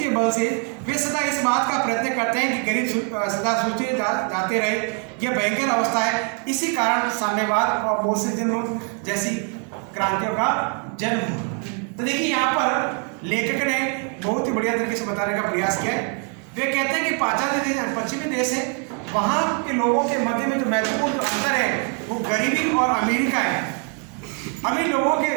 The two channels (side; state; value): left; quieter; 38.2 dB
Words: बल से वे सदा इस बात का प्रयत्न करते हैं कि गरीब सदा सूचे जाते रहे। यह भयंकर अवस्था है। इसी कारण साम्यवाद और बोल्शेविज्म जैसी क्रांतियों का जन्म हुआ। तो देखिए यहाँ पर लेखक ने बहुत ही बढ़िया तरीके से बताने का प्रयास किया है। वे कहते हैं कि पाश्चात्य देश पश्चिमी देश है, वहाँ के लोगों के मध्य में जो महत्वपूर्ण अंतर है वो गरीबी और अमीरी का है। अमीर लोगों के